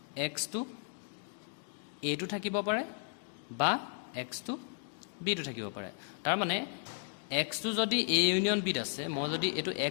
এক্সটো এটো থাকিব পাৰে বা এক্সটো বিটো থাকিব পাৰে তাৰমানে এক্সটো যদি এ ইউনিয়ন বিত আছে মই যদি এইটো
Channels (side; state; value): right; silent; 55 dB below the other